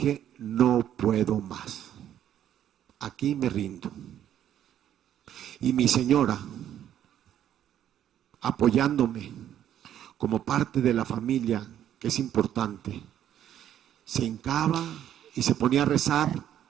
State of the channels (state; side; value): quieter; left; 10.8 dB